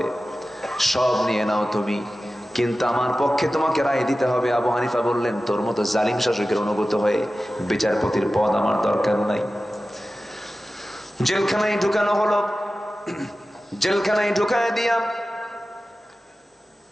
সব নিয়ে নাও তুমি, কিন্তু আমার পক্ষে তোমাকে রায় দিতে হবে। আবু হানিফা বললেন, তোর মতো জালিম শাসকের অনুগত হয়ে বিচারপতির পদ আমার দরকার নাই। জেলখানায় ঢুকানো হলো, জেলখানায় ঢুকায় দিয়া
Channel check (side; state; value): both; normal; correlation 0.95